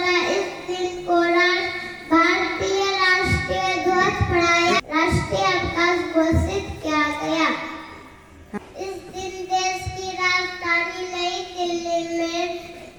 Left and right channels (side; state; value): both; identical; correlation 1.00